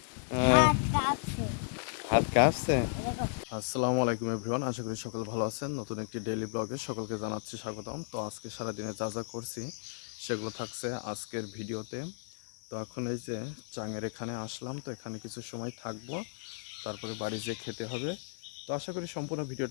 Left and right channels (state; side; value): silent; right; digital silence